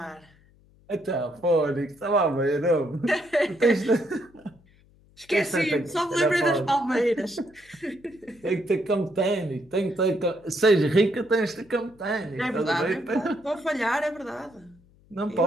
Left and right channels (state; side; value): noise; left; hum, 29 dB below the sound